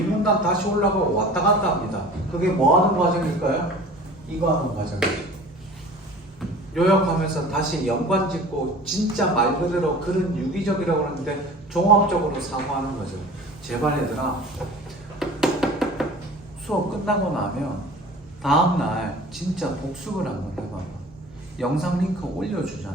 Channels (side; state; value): both; normal; correlation 0.43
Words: 다시 올라가고 왔다 갔다 합니다. 그게 뭐 하는 과정일까요? 이거 하는 과정이에요. 요약하면서 다시 연관 짓고 진짜 말 그대로 글은 유기적이라고 하는데 종합적으로 사고하는 거죠. 제발 얘들아, 수업 끝나고 나면 다음날 진짜 복습을 한번 해봐봐. 영상 링크